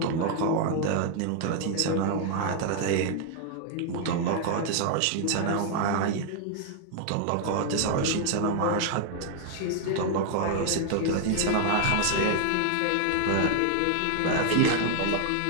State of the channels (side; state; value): both; different; correlation 0.00